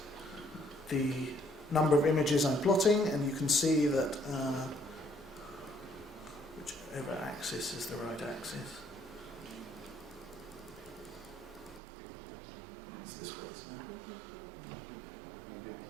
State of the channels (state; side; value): drops out; left; at 11.8 s